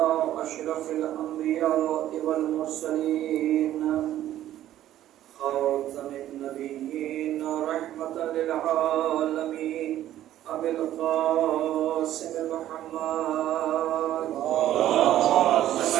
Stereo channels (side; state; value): left; quieter; 12.7 dB